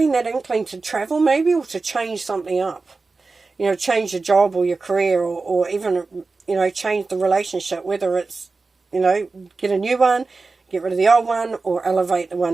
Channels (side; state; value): left; quieter; 3.9 dB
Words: that inkling to travel maybe, or to change something up. Change your job or your career, or even, change the relationship, whether it's, get a new one, get rid of the old one, or elevate the